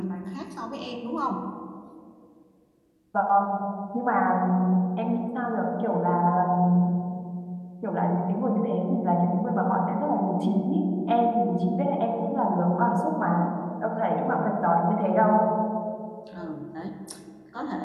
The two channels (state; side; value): identical; both; correlation 1.00